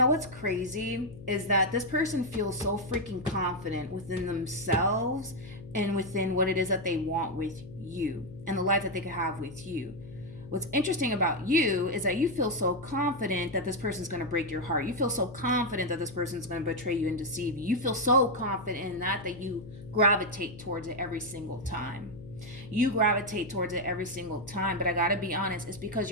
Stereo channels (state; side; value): noise; left; hum, 15 dB below the sound